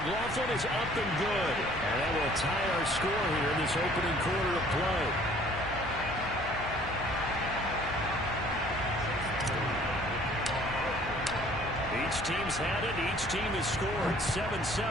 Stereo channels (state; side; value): noise; left; hum, 12 dB below the sound